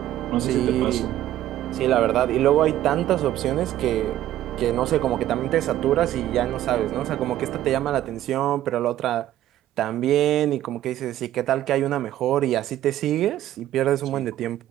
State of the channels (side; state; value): left; quieter; 13.0 dB